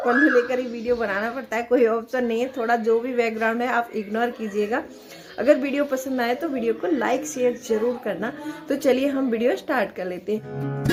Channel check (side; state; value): both; identical; correlation 1.00